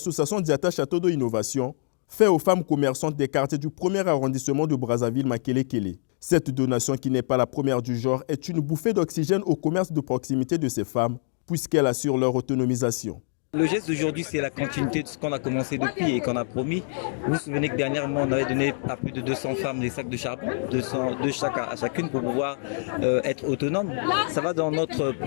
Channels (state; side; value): silent; right; digital silence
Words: Diata Château d'eau Innovation, fait aux femmes commerçantes des quartiers du 1er arrondissement de Brazzaville, Makele-Kele. Cette donation, qui n'est pas la première du genre, est une bouffée d'oxygène au commerce de proximité de ces femmes, puisqu'elle assure leur autonomisation. Le geste d'aujourd'hui, c'est la continuité de ce qu'on a commencé depuis et qu'on a promis. Vous vous souvenez que dernièrement, on avait donné à plus de 200 femmes des sacs de charbon, 200 à chacune pour pouvoir être autonome. Ça va dans notre